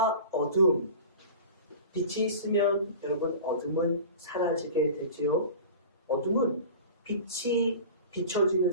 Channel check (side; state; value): both; inverted; correlation -0.37